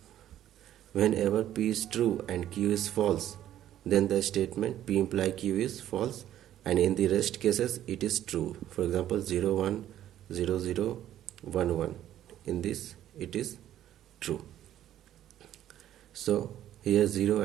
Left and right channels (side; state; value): left; quieter; 12.0 dB